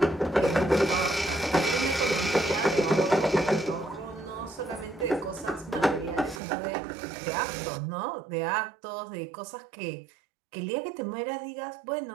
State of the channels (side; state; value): left; drops out; at 6.4 s